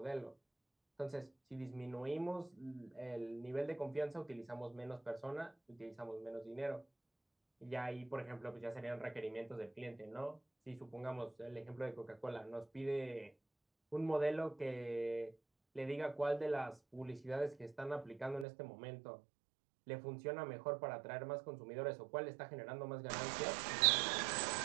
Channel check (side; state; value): left; drops out; at 18.4 s